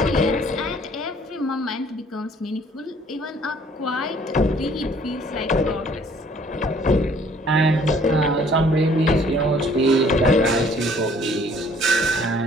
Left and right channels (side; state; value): both; normal; correlation 0.58